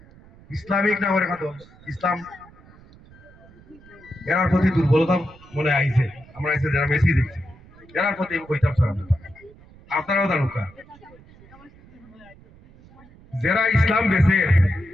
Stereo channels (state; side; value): noise; right; rumble, 24 dB below the sound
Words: ইসলামিক নামের খাতো ইসলাম এরার প্রতি দুর্বলতা মনে আইছে আমরা আইছে যারা মেসি দেখছি এরার প্রতি আমি কইতাম স্যার আপনারাও জানুকা যারা ইসলাম বেছে